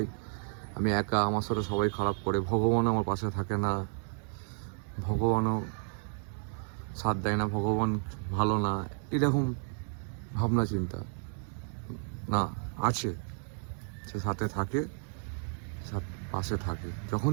আমি একা, আমার সাথে সবাই খারাপ করে, ভগবানও আমার পাশে থাকে না, ভগবানও সাথ দেয় না, ভগবান ভালো না, এরকম ভাবনা চিন্তা না, আছে, সে সাথে থাকে, পাশে থাকে। যখন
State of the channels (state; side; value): silent; left; 56 dB below the other